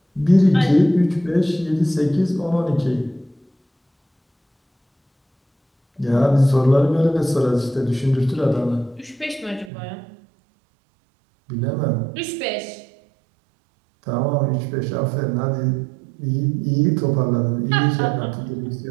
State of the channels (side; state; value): left; drops out; at 9.7 s